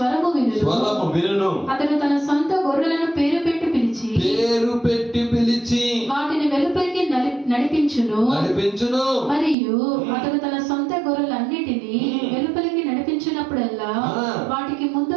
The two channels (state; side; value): drops out; left; at 9.6 s